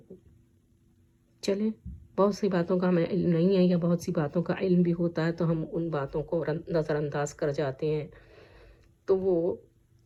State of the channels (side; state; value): both; identical; correlation 1.00